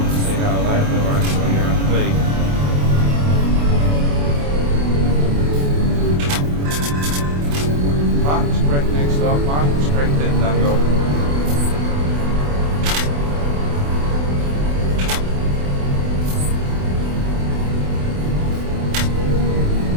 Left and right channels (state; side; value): late; left; 28 ms